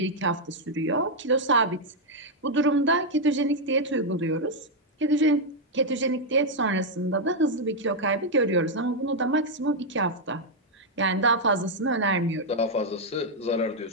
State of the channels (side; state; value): both; normal; correlation -0.01